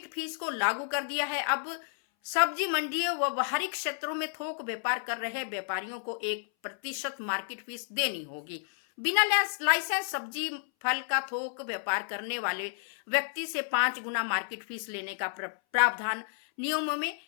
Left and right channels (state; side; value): silent; right; 57 dB below the other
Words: फीस को लागू कर दिया है। अब सब्जी मंडियों व बाहरी क्षेत्रों में थोक व्यापार कर रहे व्यापारियों को 1% मार्केट फीस देनी होगी। बिना लाइसेंस सब्जी फल का थोक व्यापार करने वाले व्यक्ति से 5 गुना मार्केट फीस लेने का प्रावधान नियमों में